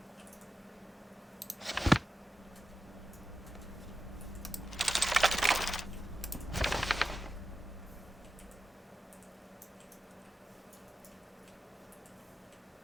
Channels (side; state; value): both; normal; correlation 0.91